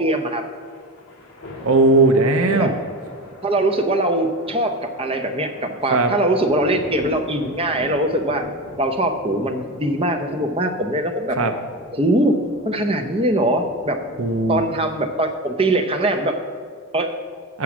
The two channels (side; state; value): both; normal; correlation 0.23